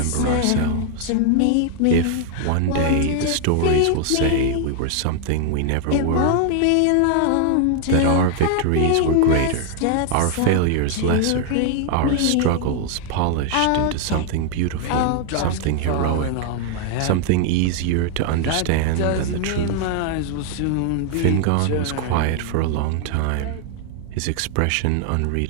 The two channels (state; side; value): different; both; correlation 0.00